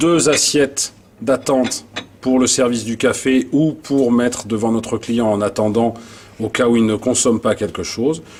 assiettes d'attente pour le service du café ou pour mettre devant notre client en attendant au cas où il ne consomme pas quelque chose.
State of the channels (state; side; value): identical; both; correlation 1.00